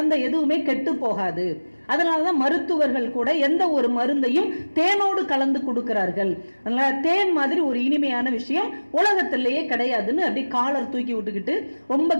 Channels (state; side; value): inverted; both; correlation -1.00